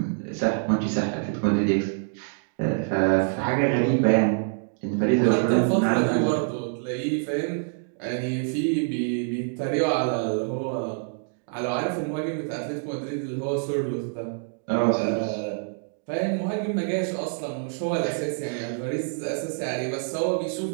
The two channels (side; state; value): left; silent; digital silence